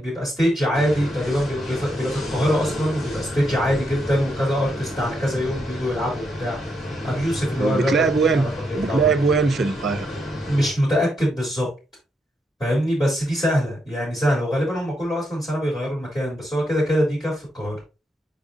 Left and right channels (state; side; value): normal; both; correlation 0.80